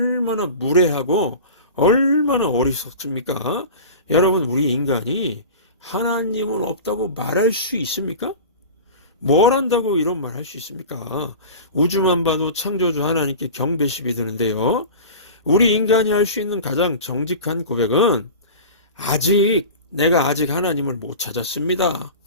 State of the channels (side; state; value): both; inverted; correlation -0.34